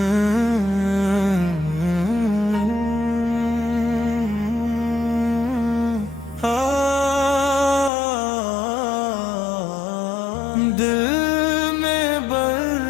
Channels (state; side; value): drops out; right; at 7.9 s